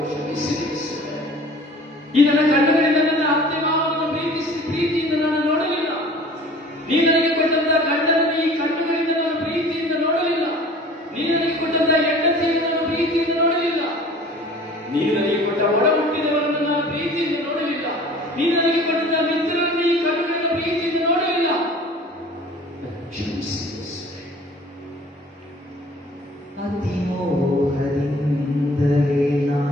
ಕ್ಷಮಿಸಿ. ಈ ನನ್ನ ಕಣ್ಣುಗಳಿಂದ ನನ್ನ ಅತ್ತೆ ಮಾವನನ್ನು ಪ್ರೀತಿಯಿಂದ ನಾನು ನೋಡಲಿಲ್ಲ. ನೀ ನನಗೆ ಕೊಟ್ಟಂತಹ ಗಂಡನನ್ನು ಈ ಕಣ್ಣುಗಳಿಂದ ನಾನು ಪ್ರೀತಿಯಿಂದ ನೋಡಲಿಲ್ಲ. ನೀ ನನಗೆ ಕೊಟ್ಟಂತಹ ಹೆಂಡತಿಯನ್ನು ನಾನು ಪ್ರೀತಿಯಿಂದ ನೋಡಲಿಲ್ಲ. ನೀ ನನಗೆ ಕೊಟ್ಟ ಒಡ ಹುಟ್ಟಿದವರನ್ನು ನಾನು ಪ್ರೀತಿಯಿಂದ ನೋಡಲಿಲ್ಲ. ನೀ ನನಗೆ ಕೊಟ್ಟಂತಹ ಮಿತ್ರರನ್ನು ಈ ಕಣ್ಣುಗಳಿಂದ ಪ್ರೀತಿಯಿಂದ ನೋಡಲಿಲ್ಲ. ಕ್ಷಮಿಸಿ. ಅತಿಮೋಹದಿಂದಲೇ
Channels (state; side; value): normal; both; correlation 0.46